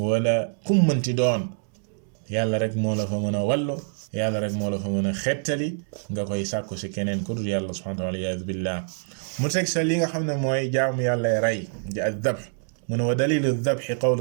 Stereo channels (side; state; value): left; silent; digital silence